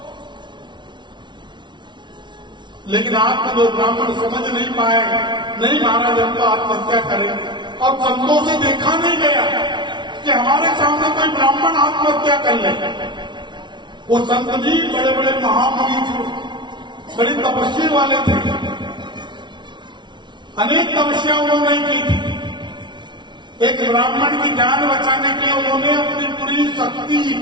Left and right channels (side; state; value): left; late; 0.23 ms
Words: लेकिन आप जो ब्राह्मण समझ नहीं पाए, नहीं महाराज हम तो आत्महत्या करेंगे। और संतों से देखा नहीं गया कि हमारे सामने कोई ब्राह्मण आत्महत्या कर ले। वो संत जी बड़े बड़े महामुनि थे, बड़ी तपस्वी वाले थे, अनेक तपस्या उन्होंने की थी। एक ब्राह्मण की जान बचाने के लिए उन्होंने अपनी पूरी शक्ति,